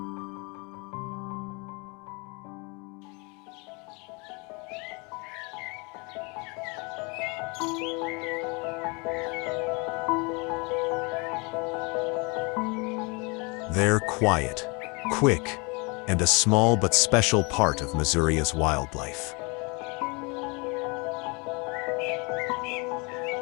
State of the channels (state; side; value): quieter; right; 29.7 dB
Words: They're quiet, quick, and a small but special part of Masuria's wildlife.